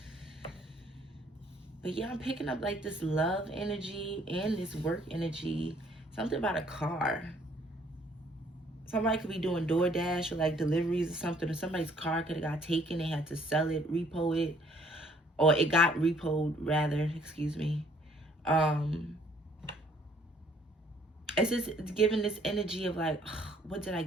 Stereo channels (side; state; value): both; normal; correlation 0.62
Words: But yeah, I'm picking up like this love energy and this work energy. Something about a car. Somebody could be doing DoorDash or like deliveries or something, or somebody's car could have got taken. They had to sell it, repo it, or it got repoed rather, excuse me. It's just giving this energy of like, what did I